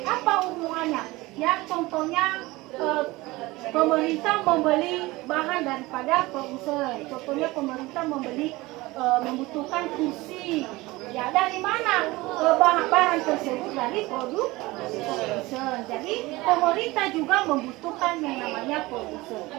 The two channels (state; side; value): quieter; left; 20.7 dB